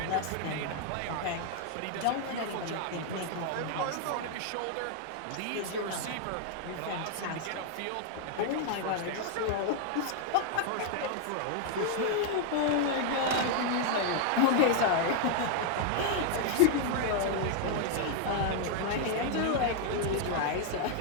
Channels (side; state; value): both; different; correlation 0.00